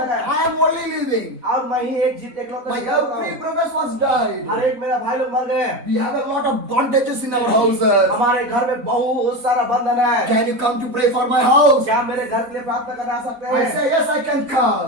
लगे I am only living. और मैं ही एक इकलौता My जीवित every हूँ। brothers was died. हर एक मेरा भाई लोग मर गए। We have a lot of bondages in our houses. हमारे घर में बहुत सारा बंधन है। Can you come to pray for my house? क्या मेरे घर के लिए प्रार्थना करने आ सकते I हैं? say yes, I can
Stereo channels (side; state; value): left; late; 4.0 ms